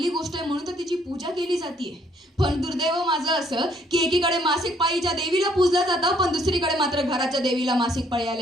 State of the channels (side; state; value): both; normal; correlation 0.65